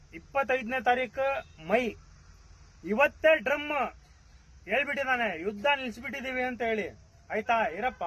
25ನೇ ತಾರೀಕು ಮೈ. ಇವತ್ತೇ ಡ್ರಮ್ ಹೇಳ್ಬಿಟ್ಟಿದ್ದಾನೆ, ಯುದ್ಧ ನಿಲ್ಸ್ಬಿಟ್ಟಿದೀವಿ ಅಂತ ಹೇಳಿ. ಆಯ್ತಾ ಇರಪ್ಪ,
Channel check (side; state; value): both; identical; correlation 1.00